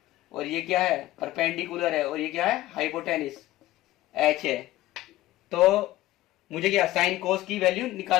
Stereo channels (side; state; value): right; quieter; 16.1 dB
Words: और ये क्या है, परपेंडिकुलर है, और ये क्या है, हाइपोटेनिस एच है। तो मुझे क्या साइन कोस की वैल्यू